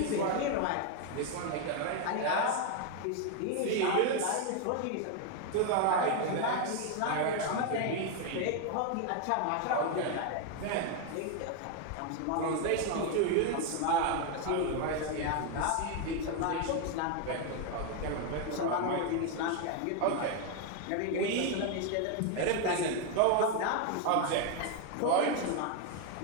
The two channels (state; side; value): different; both; correlation 0.01